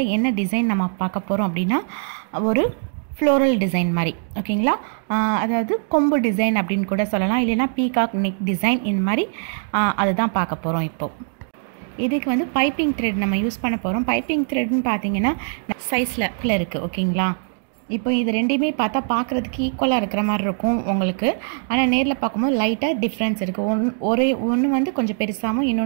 என்ன டிசைன் நம்ம பார்க்க போகிறோம் அப்படின்னா ஒரு ஃப்ளோரல் டிசைன் மாதிரி, ஓகேங்களா. அதாவது கொம்பு டிசைன் அப்படின்னு கூட சொல்லலாம், இல்லைன்னா பீகாக் நெக் டிசைன், இந்த மாதிரி அதுதான் பார்க்க போகிறோம். இப்போது இதுக்கு வந்து பைப்பிங் த்ரெட் நம்ம யூஸ் பண்ண போகிறோம். பைப்பிங் த்ரெட்னு பார்த்தீங்கன்னா சைஸில் இருக்குது, ஓகேங்களா. இப்போ இது ரெண்டையுமே பார்த்தா பார்க்குறதுக்கு ஈக்குவலாக இருக்கிற மாதிரி இருக்கும் உங்களுக்கு, ஆனால் நேரில் பார்க்கும்போது லைட்டாக டிஃப்ரென்ஸ் இருக்குது. ஒன்று வந்து கொஞ்சம் பெருசாகவும்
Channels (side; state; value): left; silent; 64 dB below the other